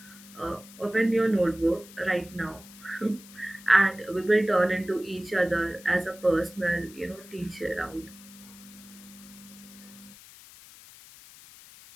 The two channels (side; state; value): left; noise; hiss, 20 dB below the sound